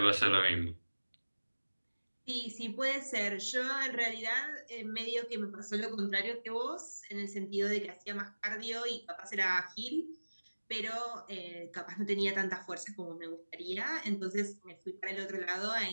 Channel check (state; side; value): inverted; both; correlation -1.00